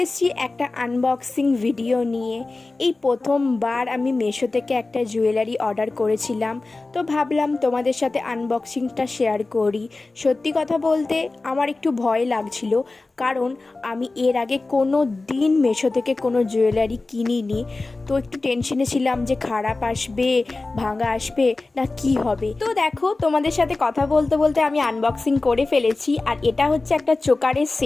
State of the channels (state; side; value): quieter; right; 3.4 dB